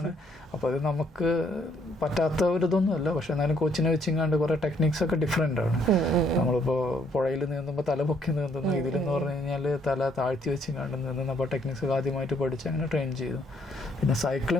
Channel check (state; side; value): normal; both; correlation 0.68